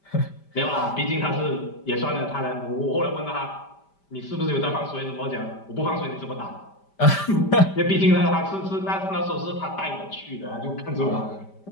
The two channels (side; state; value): right; late; 5.1 ms